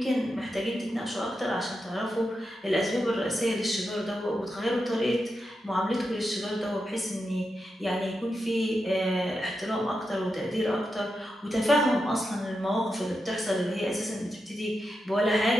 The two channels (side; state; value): both; normal; correlation 0.87